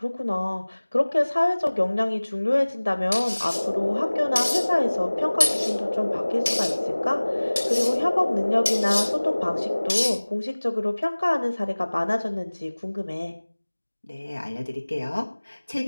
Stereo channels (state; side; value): inverted; both; correlation -1.00